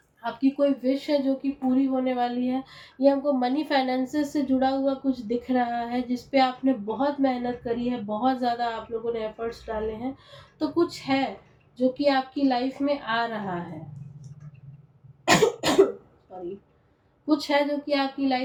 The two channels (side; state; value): both; identical; correlation 1.00